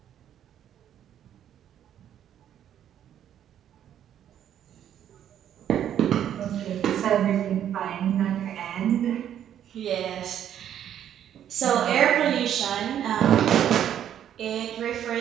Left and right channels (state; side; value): quieter; left; 10.2 dB